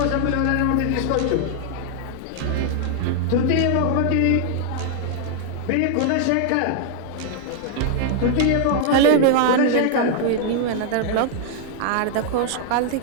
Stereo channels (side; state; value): both; different; correlation -0.01